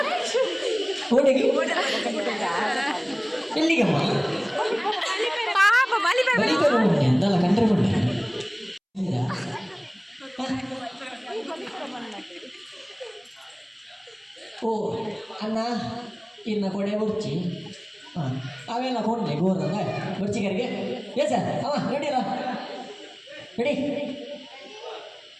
ಓಡಿ ಎಲ್ಲಿಗಮ್ಮ ಎಂದಲ್ಲ ಕಂಡ್ರೆ ಬಂದ ಓ ಅನ್ನ ಇನ್ನ ಕೊಡೆ ಬುರ್ಚಿ ಅವೆಲ್ಲ ಕೊಡ್ಲೆ ಗೋರ್ದ ಬುರ್ಚಿಗರಿಗೆ ಏ ಸರ್ ಅವ ರೆಡಿಲ್ಲ ರೆಡಿ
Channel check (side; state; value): both; identical; correlation 1.00